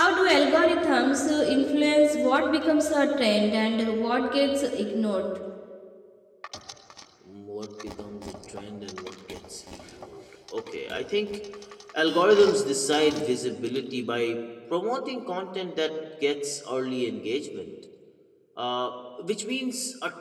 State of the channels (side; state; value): both; identical; correlation 1.00